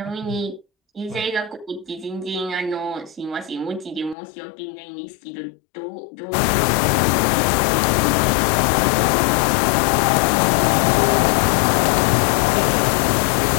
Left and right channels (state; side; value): drops out; right; at 4.2 s